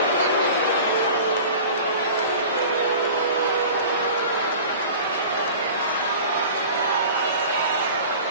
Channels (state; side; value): inverted; both; correlation -0.39